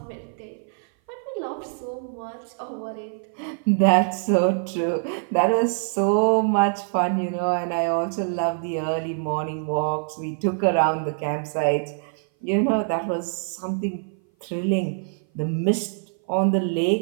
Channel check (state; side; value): silent; left; 57 dB below the other